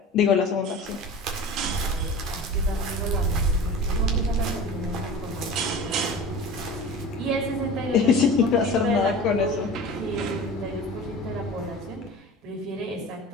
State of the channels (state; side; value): normal; both; correlation 0.36